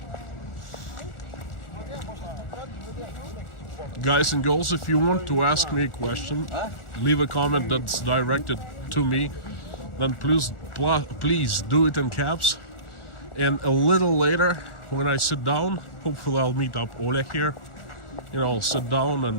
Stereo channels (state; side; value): late; right; 1.4 ms